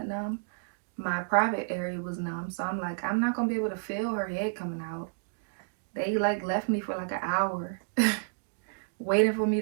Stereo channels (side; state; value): left; silent; digital silence